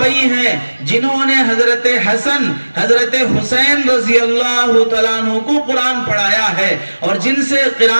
ہیں جنہوں نے حضرت حسن, حضرت حسین رضی اللہ تعالیٰ عنہ کو قرآن پڑھایا ہے اور جن سے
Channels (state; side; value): inverted; both; correlation -1.00